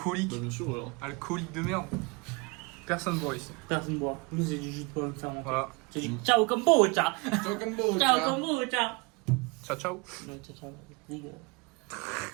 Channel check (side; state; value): left; quieter; 28.3 dB